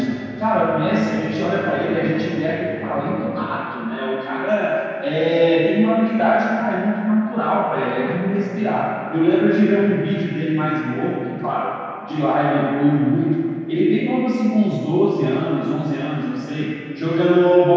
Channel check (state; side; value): identical; both; correlation 1.00